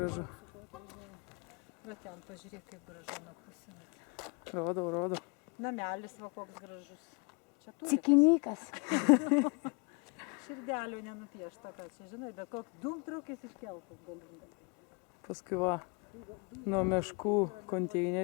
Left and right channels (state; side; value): quieter; right; 32.4 dB